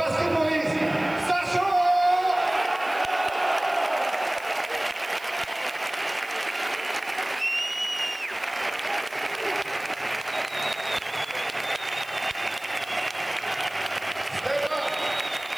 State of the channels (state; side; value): noise; right; hiss, 22 dB below the sound